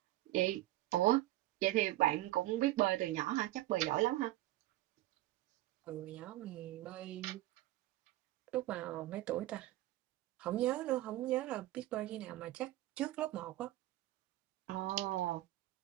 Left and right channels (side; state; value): left; quieter; 16.2 dB